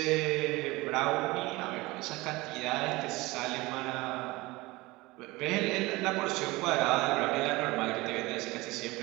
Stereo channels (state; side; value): quieter; left; 21.5 dB